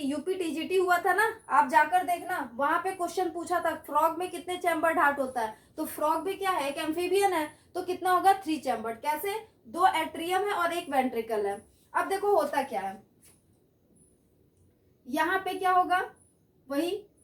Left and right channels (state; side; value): identical; both; correlation 1.00